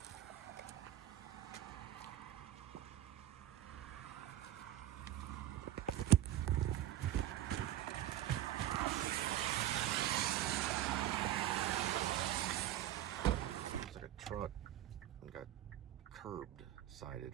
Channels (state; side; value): quieter; left; 12.9 dB